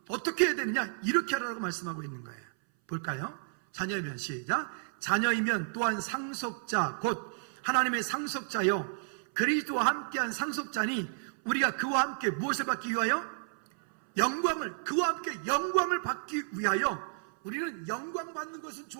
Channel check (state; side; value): silent; left; 57 dB below the other